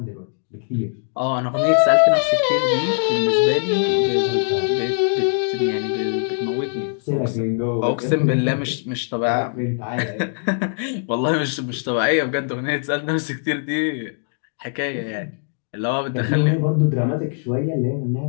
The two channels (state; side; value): silent; right; digital silence